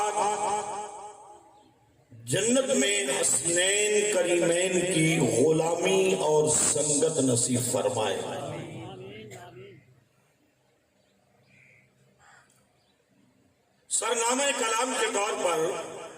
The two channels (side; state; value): both; identical; correlation 1.00